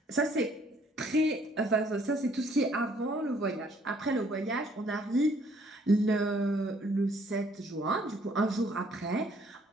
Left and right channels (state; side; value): normal; both; correlation 0.63